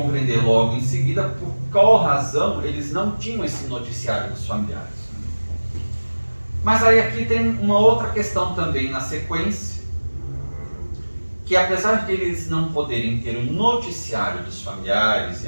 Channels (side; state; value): both; inverted; correlation -1.00